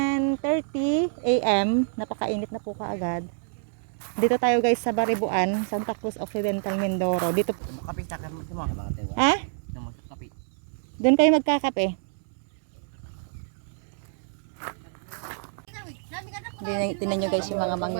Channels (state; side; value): silent; left; digital silence